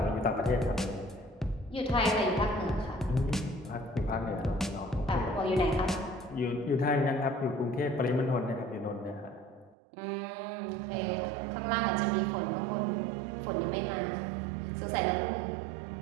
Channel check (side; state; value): left; drops out; at 9.8 s